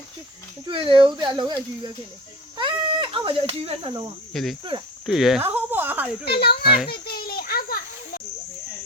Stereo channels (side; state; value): both; normal; correlation 0.35